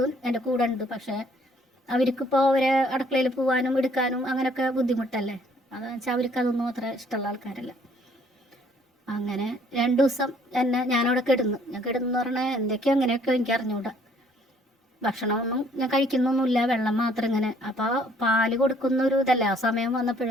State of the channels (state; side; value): normal; both; correlation 0.62